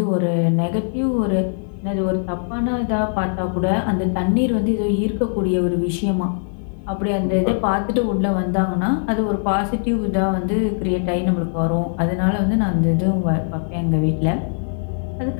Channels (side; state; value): right; silent; digital silence